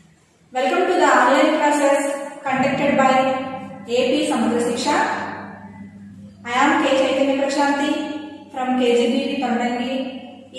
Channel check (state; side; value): identical; both; correlation 1.00